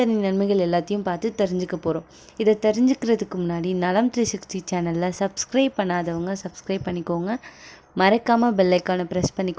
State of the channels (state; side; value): identical; both; correlation 1.00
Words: நன்மைகள் எல்லாத்தையும் பார்த்து தெரிஞ்சுக்க போகிறோம். இதை தெரிஞ்சுக்கிறதுக்கு முன்னாடி நலம் 360 சேனலில் சப்ஸ்கிரைப் பண்ணாதவங்க சப்ஸ்கிரைப் பண்ணிக்கோங்க. மறக்காமல் பெல் ஐக்கானை ப்ரெஸ்